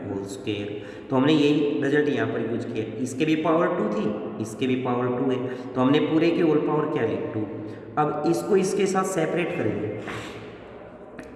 होल स्क्वायर। तो हमने यही रिजल्ट यहाँ पर यूज किया। इसके भी पावर 2 थी, इसके भी पावर 2 है, तो हमने पूरे की होल पावर क्या ली 2। अब इसको इसके साथ सेपरेट करेंगे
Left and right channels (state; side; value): identical; both; correlation 1.00